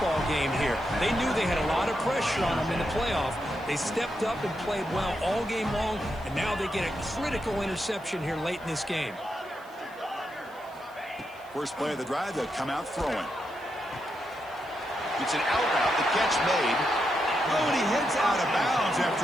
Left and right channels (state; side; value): noise; right; hiss, 27 dB below the sound